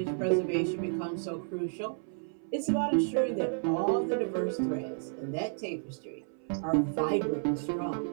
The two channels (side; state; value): left; silent; 57 dB below the other